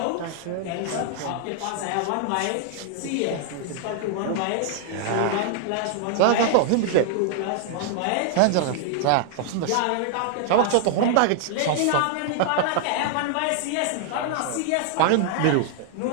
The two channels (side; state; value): both; different; correlation -0.01